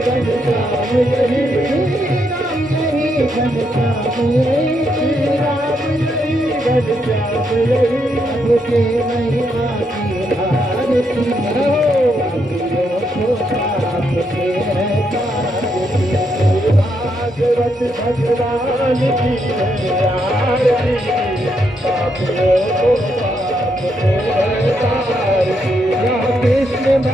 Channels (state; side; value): normal; both; correlation 0.78